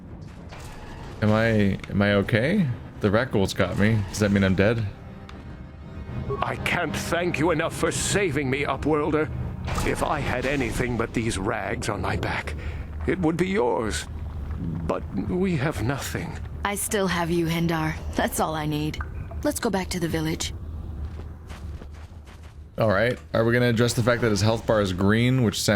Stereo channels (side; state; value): both; identical; correlation 1.00